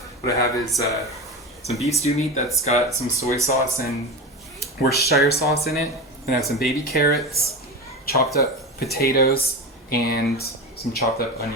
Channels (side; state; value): both; normal; correlation 0.24